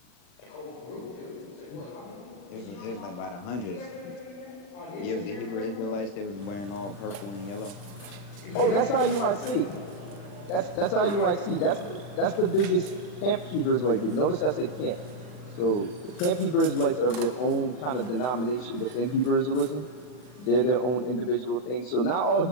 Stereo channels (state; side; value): late; right; 40 ms